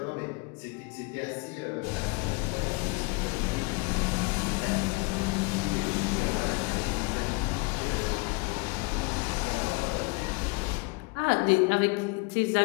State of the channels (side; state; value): right; quieter; 28.7 dB